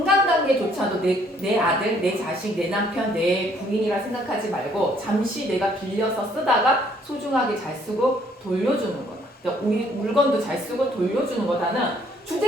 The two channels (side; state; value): both; normal; correlation 0.64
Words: 내 아들, 내 자식, 내 남편, 내 부인이라 생각하지 말고 잠시 내가 빌려서 쓰다가 소중하게 잘 쓰고 돌려주는 거다. 그러니까 우리 물건도 잘 쓰고 돌려주는 거다는